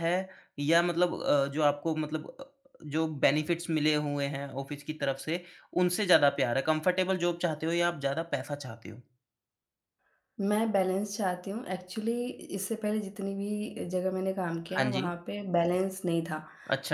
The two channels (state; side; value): identical; both; correlation 1.00